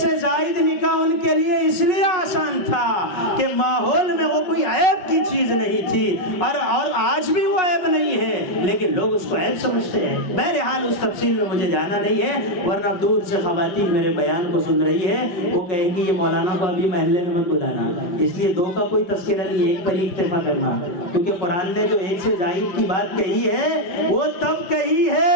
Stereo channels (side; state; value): right; late; 5.4 ms